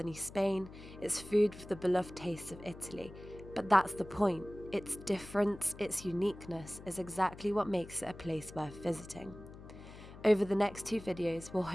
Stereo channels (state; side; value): noise; left; hum, 16 dB below the sound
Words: Spain, its food with the beloved tastes of Italy. But that's the point. Its difference, its uniqueness, is exactly what makes it a place worth visiting. Over the next 2 videos, we'll